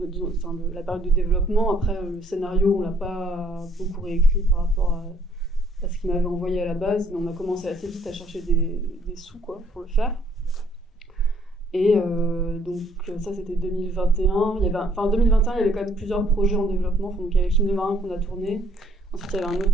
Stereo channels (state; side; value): normal; both; correlation 0.64